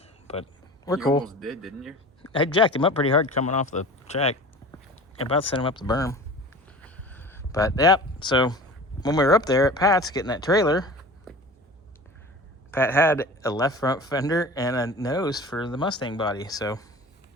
but we're You cool. almost did, didn't you? I jacked him up pretty hard coming off the track. About to send him up the berm. But, yep. So, when we were up there at Pat's getting that trailer, Pat had a left front fender and a nose for the Mustang body. So,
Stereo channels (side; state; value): both; normal; correlation 0.38